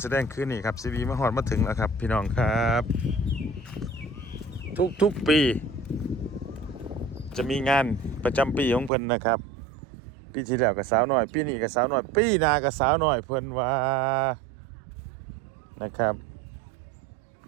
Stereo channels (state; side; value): drops out; left; at 8.9 s